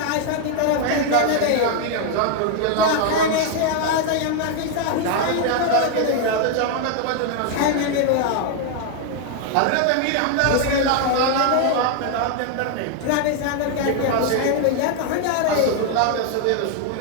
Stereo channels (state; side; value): different; both; correlation 0.00